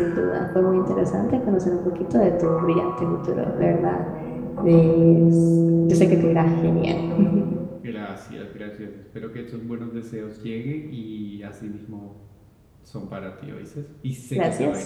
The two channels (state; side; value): identical; both; correlation 1.00